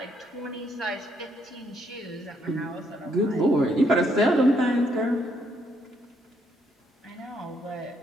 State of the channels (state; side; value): normal; both; correlation 0.73